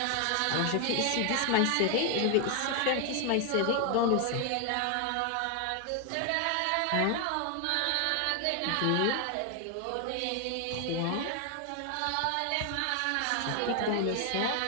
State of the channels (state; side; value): different; both; correlation 0.00